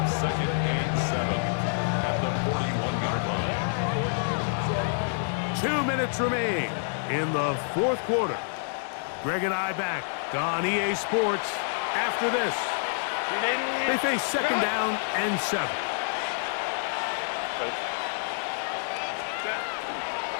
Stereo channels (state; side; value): silent; right; 60 dB below the other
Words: 2nd and 7 at the 41-yard line. 2 minutes remain in the fourth quarter. Greg and I back on EA Sports after this. They face 2nd down and 7.